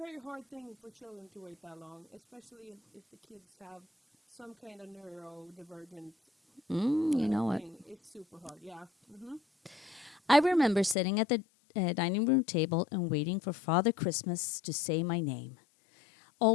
hard thing for children to wait that long, especially if the kids have some kind of neurodivergent thing. It's super hard, yeah. Mm-hmm. I remember sitting at the dining room table and waiting for Father Christmas to say my name.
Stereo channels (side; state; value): right; drops out; at 11.0 s